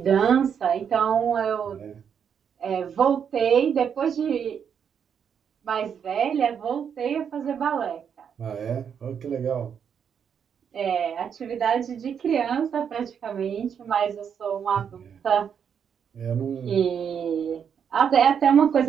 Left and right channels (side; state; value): left; quieter; 7.6 dB